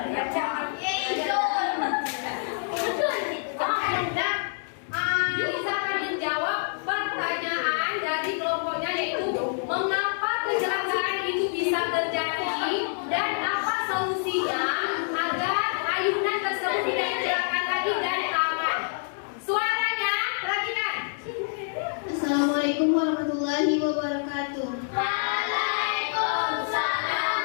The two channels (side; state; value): right; silent; digital silence